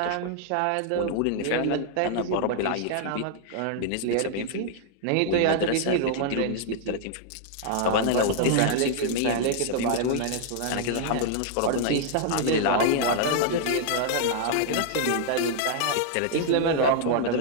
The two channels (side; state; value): both; different; correlation -0.01